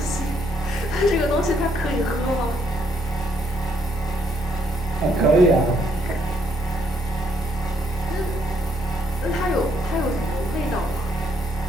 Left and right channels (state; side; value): normal; both; correlation 0.71